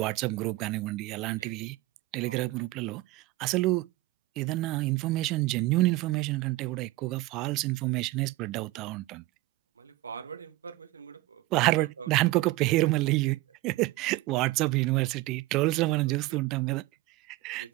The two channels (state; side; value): quieter; left; 18.8 dB